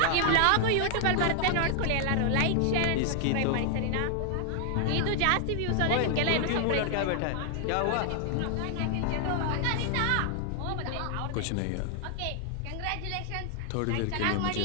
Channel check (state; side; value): different; both; correlation 0.00